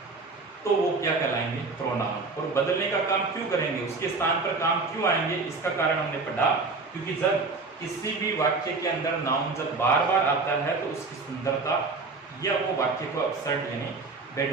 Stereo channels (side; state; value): left; quieter; 3.9 dB